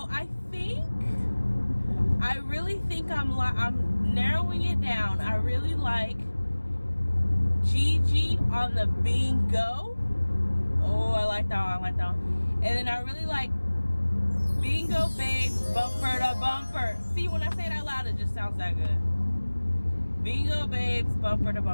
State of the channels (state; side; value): inverted; both; correlation -1.00